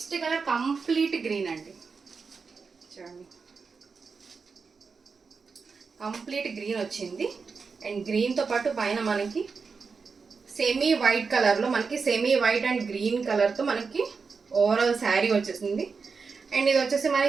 కలర్ కంప్లీట్ గ్రీన్ అండి. చూడండి కంప్లీట్ గ్రీన్ వచ్చింది. అండ్ గ్రీన్తో పాటు పైన మనకి సెమీ వైట్ కలర్లో మనకి సెమీ వైట్ అండ్ గ్రీన్ కలర్తో మనకి ఓవరాల్ శారీ వచ్చేసింది. అండ్ ఇది వచ్చేసి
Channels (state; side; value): quieter; left; 5.0 dB